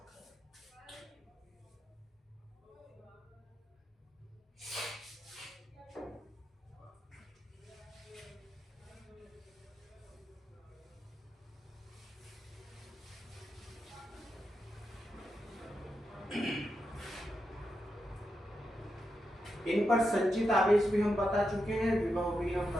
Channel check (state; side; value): normal; both; correlation 0.86